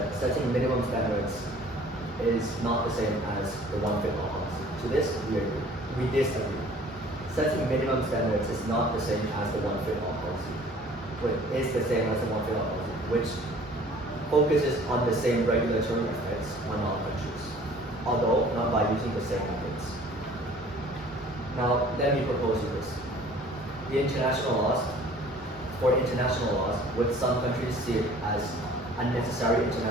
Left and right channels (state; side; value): normal; both; correlation 0.51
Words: setting minimum standards is not the same as the one-fit-all policy. To this, we agree. We disagree. Setting minimum standards is not the same as the one-fit-all policy. But is the same as the one-fit-all policy, which focuses on the same regulatory effects on all countries, although not by using the same methods. Now, let me propose you this. For international laws, would some countries see it as unnecessary